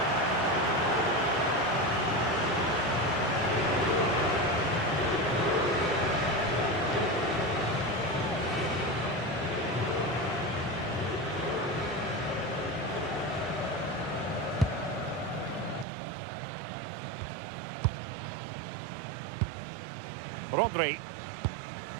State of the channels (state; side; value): drops out; left; at 15.9 s